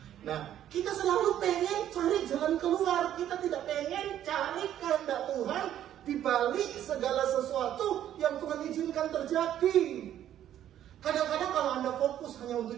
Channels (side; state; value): left; quieter; 11.2 dB